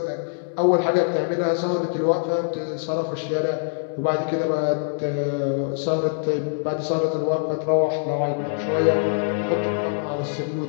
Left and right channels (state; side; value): silent; right; digital silence